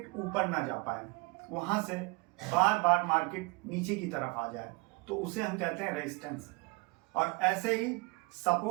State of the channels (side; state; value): left; quieter; 26.7 dB